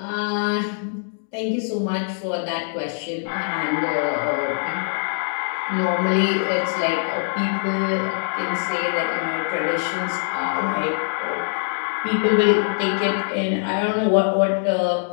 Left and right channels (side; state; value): right; silent; digital silence